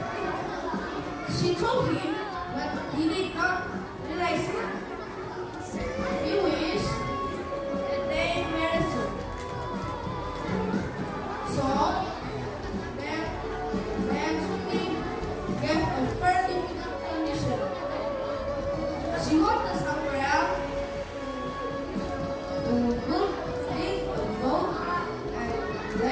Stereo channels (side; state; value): both; identical; correlation 1.00